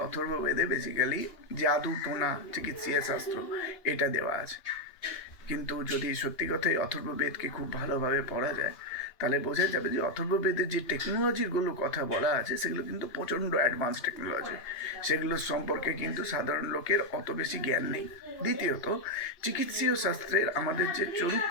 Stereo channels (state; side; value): late; right; 2.8 ms